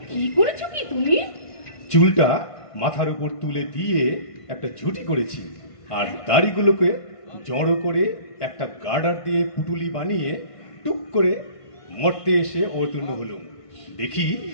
কি করেছো কি তুমি? চুলটা মাথার উপর তুলে দিয়ে একটা ঝুঁটি করেছি, আর দাড়িগুলোকে জড়ো করে একটা গার্ডার দিয়ে পুটুলি বানিয়ে টুক করে মরতে এসে অবতীর্ণ হলুম। দেখি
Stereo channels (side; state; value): right; late; 1.5 ms